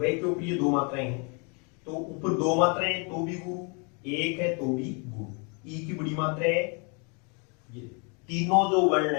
के ऊपर ये 2 मात्राएं हैं तो ऊपर 2 मात्राएं हैं तो भी गुरु, 1 है तो भी गुरु, ई की बड़ी मात्रा है, ये तीनों जो वर्ण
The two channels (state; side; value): quieter; right; 34.5 dB